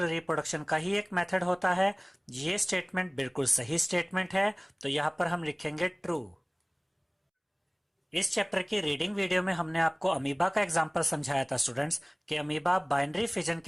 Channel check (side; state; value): both; identical; correlation 1.00